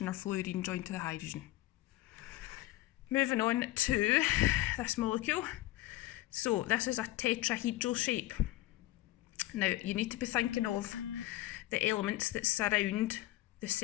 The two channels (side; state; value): right; quieter; 16.5 dB